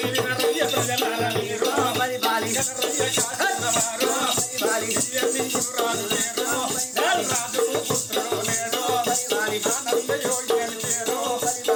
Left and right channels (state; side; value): identical; both; correlation 1.00